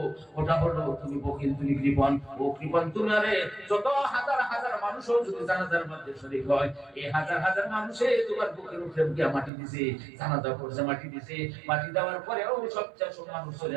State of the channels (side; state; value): left; drops out; at 9.5 s